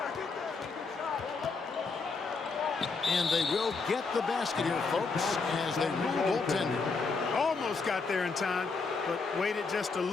And they will get the basket here, folks, as they rule goaltender. Almost got there in time, but waited just a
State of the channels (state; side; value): quieter; right; 4.4 dB